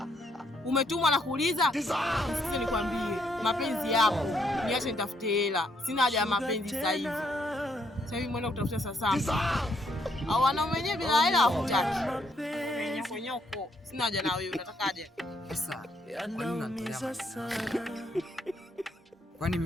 umetumwa na kuuliza? Sasa nikwambie, mapenzi yako niache nitafute hela. Sina haja ya mapenzi sasa hivi. Sasa hivi mwenda kutafuta sasa. Au wanaume wenyewe bila hela hawataki. Nyoko. Sina haja na wewe, unatakaje? Sasa, kwani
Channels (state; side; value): normal; both; correlation 0.72